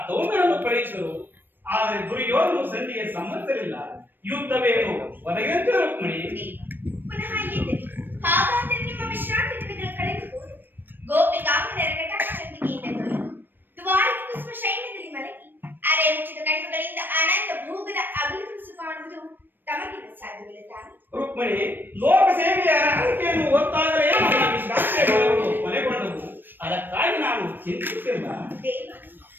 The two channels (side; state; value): left; late; 0.094 ms